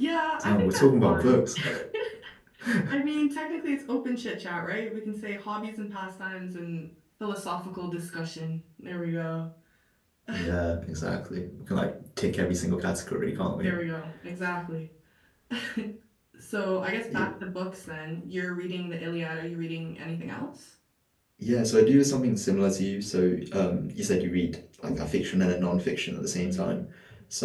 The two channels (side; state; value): both; identical; correlation 1.00